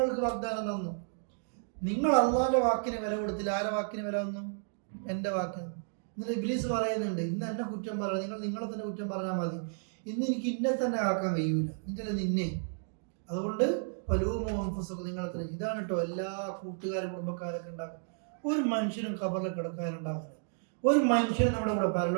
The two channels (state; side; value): silent; left; digital silence